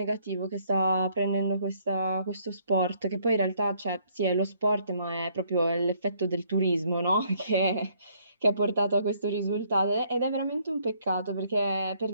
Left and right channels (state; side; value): inverted; both; correlation -0.66